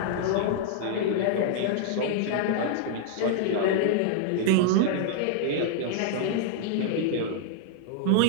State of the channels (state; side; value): different; both; correlation -0.01